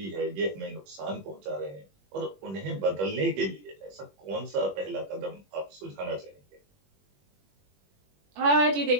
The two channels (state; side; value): late; left; 21 ms